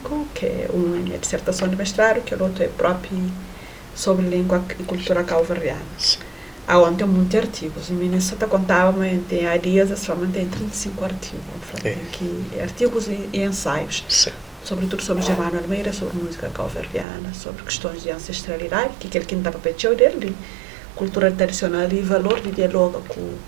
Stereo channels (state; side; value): drops out; left; at 17.1 s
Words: que um é dissertação de mestrado, que o outro é próprio sobre língua e cultura calverdiana. Onde tem muitos artigos. Em Minnesota contava, mas há dias somente tem 35 artigos. Artigos e ensaios. Sim. Sobretudo sobre Germano Almeida, sobre música calverdiana, sobre questões de ancestralidade, que é aquele que não está para pedir dele, cultura tradicional e valor de diálogo